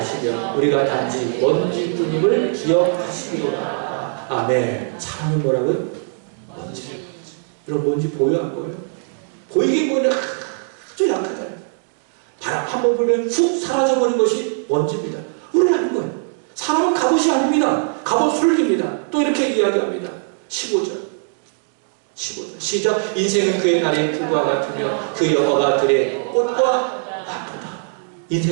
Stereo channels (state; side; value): silent; left; 65 dB below the other